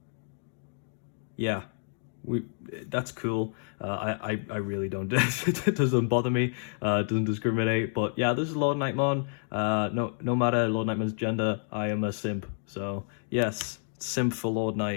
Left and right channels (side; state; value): right; silent; 58 dB below the other